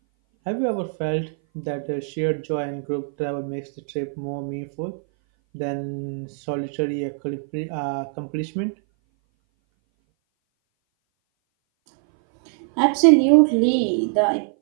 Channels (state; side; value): silent; left; 59 dB below the other